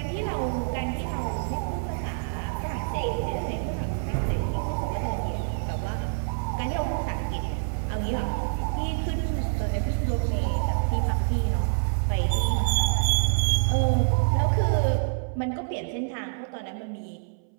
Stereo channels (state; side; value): silent; left; 60 dB below the other